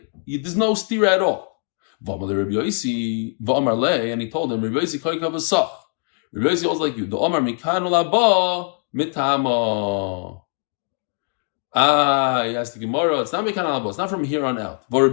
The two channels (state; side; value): quieter; right; 39.7 dB